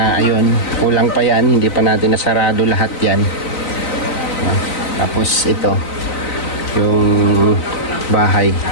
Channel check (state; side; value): late; right; 3.9 ms